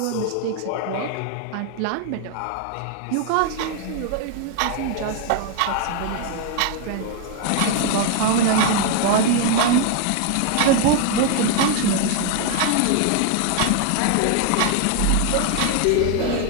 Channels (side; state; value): both; different; correlation 0.00